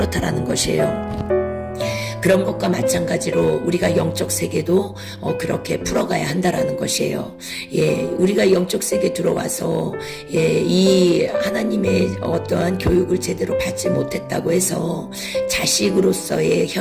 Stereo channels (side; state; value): both; identical; correlation 1.00